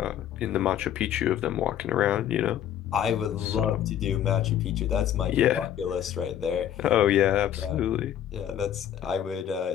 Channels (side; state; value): right; quieter; 10.5 dB